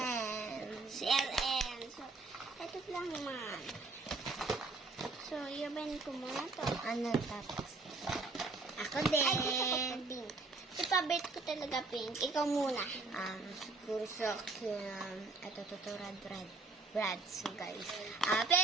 So, ito lang naman. So, yaban ko muna to. Ano tapos? Ako din. Ay, gusto ko pa pink. Ipabit ko talaga pink. Ikaw muna. Siguro sa akin, ito Brad. So guys,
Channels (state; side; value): quieter; left; 3.7 dB